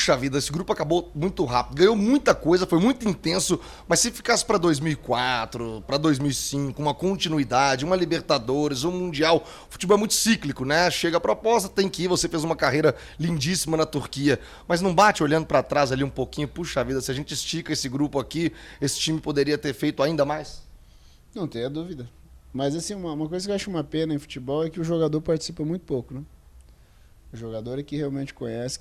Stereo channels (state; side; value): identical; both; correlation 1.00